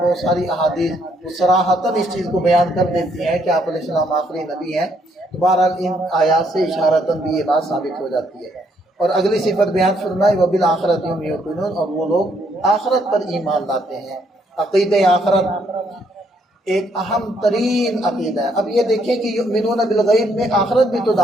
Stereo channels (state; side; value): normal; both; correlation 0.71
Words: ساری احادیث صراحتاً اس چیز کو بیان کر دیتی ہیں کہ آپ علیہ السلام آخری نبی ہیں، تو بہرحال ان آیات سے اشارتاً بھی یہ بات ثابت ہو جاتی ہے۔ اور اگلی صفت بیان فرمائی وبالآخرۃ هم یوقنون، اور وہ لوگ آخرت پر ایمان لاتے ہیں۔ عقیدہ آخرت ایک اہم ترین عقیدہ ہے۔ اب یہ دیکھیں کہ یؤمنون بالغیب میں آخرت بھی تو